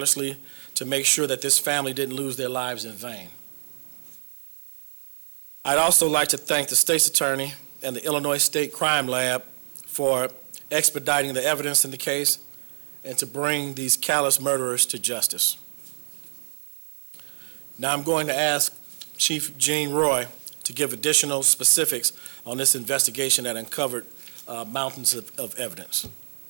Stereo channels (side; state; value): left; silent; 61 dB below the other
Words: to make sure that this family didn't lose their lives in vain. I'd also like to thank the state's attorney and the Illinois State Crime Lab for expediting the evidence in the case and to bring these callous murderers to justice. Now I'm going to ask Chief Gene Roy to give additional specifics on this investigation that uncovered mountains of evidence.